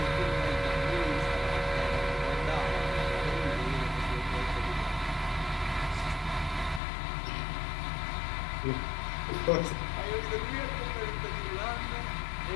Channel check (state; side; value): drops out; right; at 6.8 s